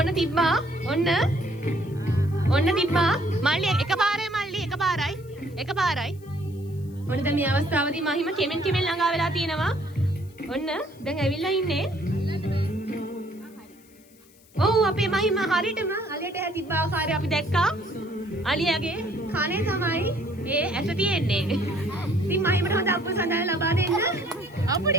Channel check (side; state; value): left; noise; hiss, 28 dB below the sound